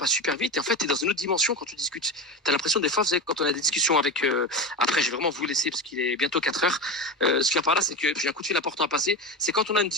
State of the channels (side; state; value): both; normal; correlation 0.22